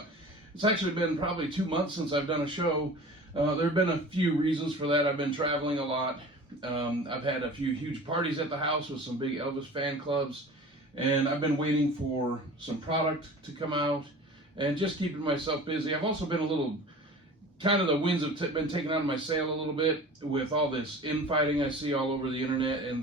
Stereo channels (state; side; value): normal; both; correlation 0.40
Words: It's actually been probably 2 months since I've done a show. There have been a few reasons for that. I've been traveling a lot. I've had a few huge parties at the house with some big Elvis fan clubs, and I've been waiting for some product to come out and just keeping myself busy. I've also been a little, kind of the winds have been taken out of my sail a little bit with all this infighting I see all over the internet and